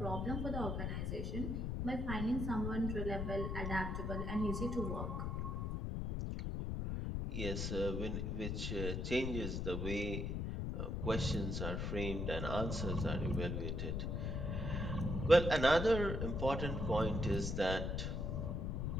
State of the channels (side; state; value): left; noise; rumble, 1 dB below the sound